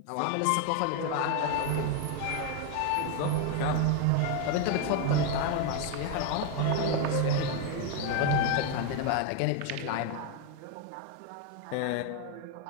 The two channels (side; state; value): both; different; correlation 0.01